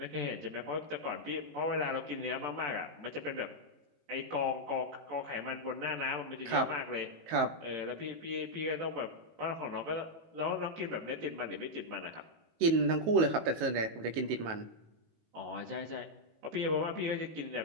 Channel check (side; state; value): left; late; 18 ms